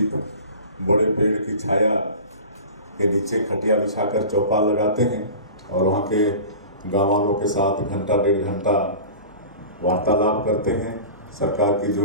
बड़े पेड़ की छाया के नीचे खटिया बिछाकर चौपाल लगाते हैं और वहाँ के गाँव वालों के साथ घंटा 1.5 घंटा वार्तालाप करते हैं। सरकार की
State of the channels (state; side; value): inverted; both; correlation -0.36